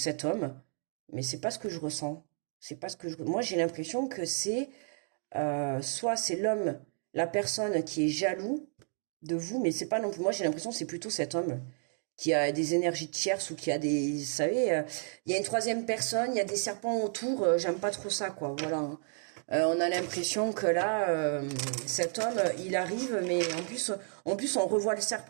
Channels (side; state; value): left; silent; 56 dB below the other